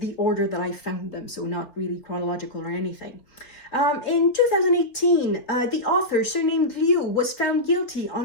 order that I found them, so not really chronological or anything. In 2018, the author, surnamed Liu, was found guilty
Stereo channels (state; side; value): late; right; 4.0 ms